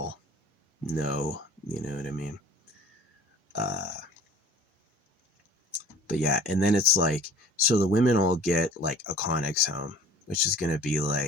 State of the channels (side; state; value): both; normal; correlation 0.46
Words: No, you know what I mean? Uh, but yeah, and then it's like, so the women all get like a Connex home, which is going to be